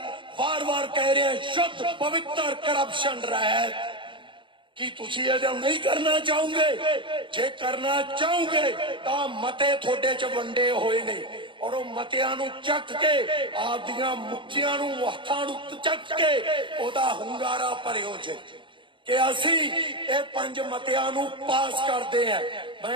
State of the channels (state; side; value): late; left; 0.24 ms